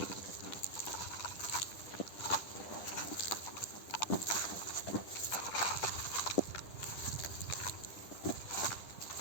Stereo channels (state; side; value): late; right; 10 ms